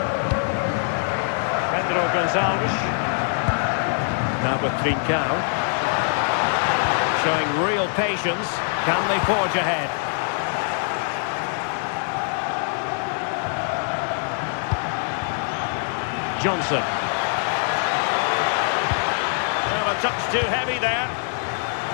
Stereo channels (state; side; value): silent; right; 56 dB below the other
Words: Pedro Gonzalez. Now with Trincao. Showing real patience. Can they forge ahead? Johnson. Well, a touch too heavy there.